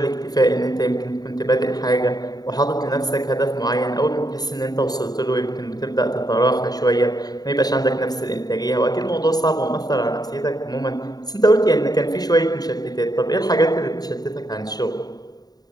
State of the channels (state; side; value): late; right; 0.19 ms